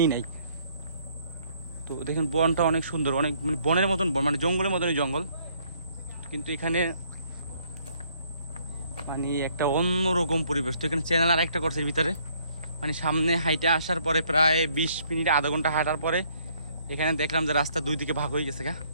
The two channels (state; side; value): inverted; both; correlation -0.65